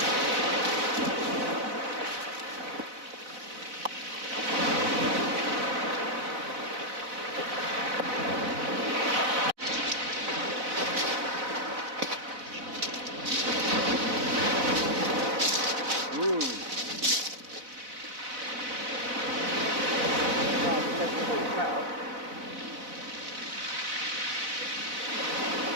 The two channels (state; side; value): late; left; 4.0 ms